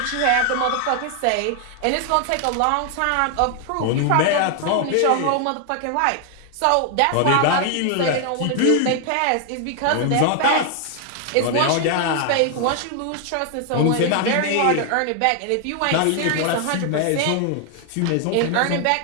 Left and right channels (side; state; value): both; different; correlation 0.00